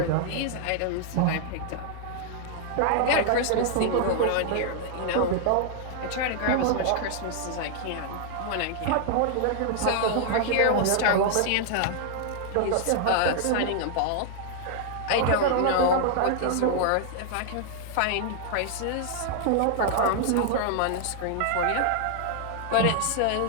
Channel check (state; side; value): different; both; correlation 0.00